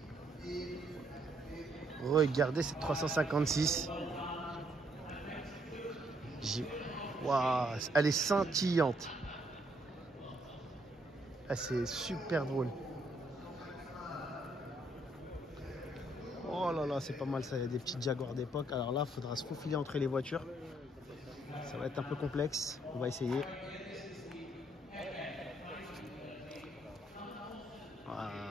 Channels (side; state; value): both; normal; correlation 0.71